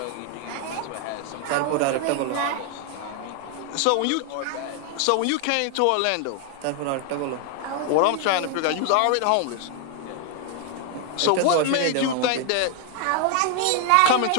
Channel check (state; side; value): different; both; correlation 0.00